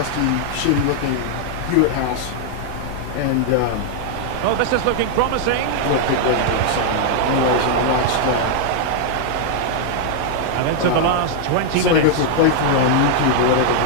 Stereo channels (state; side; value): different; both; correlation 0.00